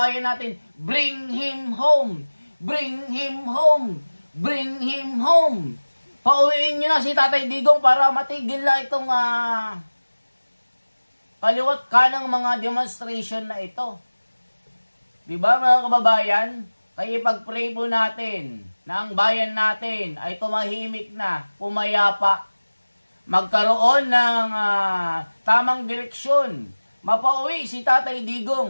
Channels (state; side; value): inverted; both; correlation -1.00